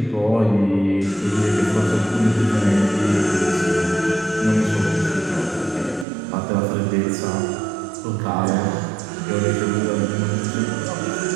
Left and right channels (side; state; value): left; drops out; at 6.1 s